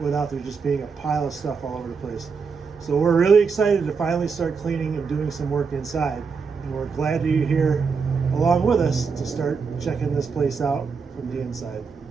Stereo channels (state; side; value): quieter; left; 5.4 dB